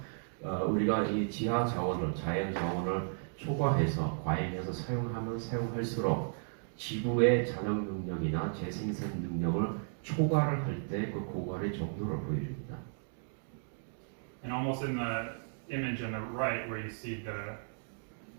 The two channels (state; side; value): silent; left; digital silence